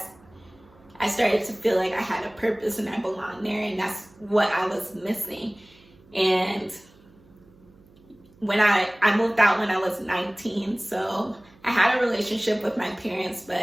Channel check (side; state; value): right; noise; hum, 28 dB below the sound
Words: I started to feel like I had a purpose and I belonged there, and that's what I was missing. And when I moved out when I was 19, so I had a relationship with my parents,